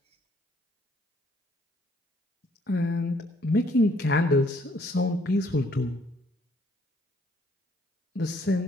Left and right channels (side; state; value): both; normal; correlation 0.64